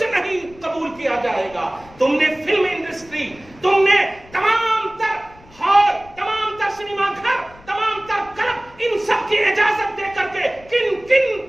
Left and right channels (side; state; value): left; noise; rumble, 24 dB below the sound